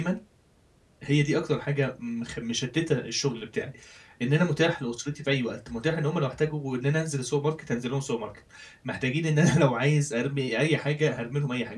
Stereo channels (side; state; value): both; identical; correlation 1.00